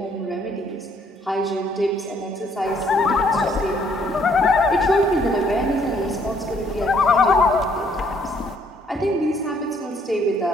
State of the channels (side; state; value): both; normal; correlation 0.65